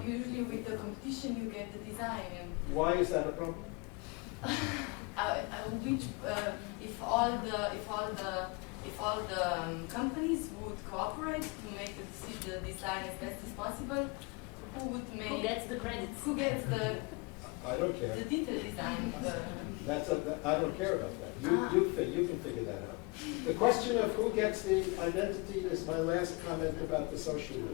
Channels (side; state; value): right; quieter; 28.7 dB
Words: usually with the competition you get the design and Why is that a problem? if all the companies would cooperate to make the design as best as possible, who would make? Who gets the credits? Who gets the I don't care. detailed design? I don't care about that. You can figure that out. The question of who gets the identity is my last comment about the social